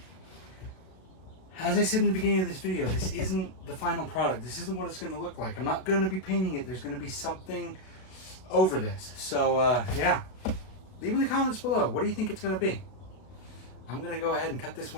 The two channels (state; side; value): late; right; 32 ms